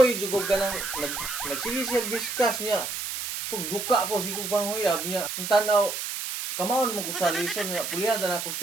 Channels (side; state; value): right; noise; hiss, 5 dB below the sound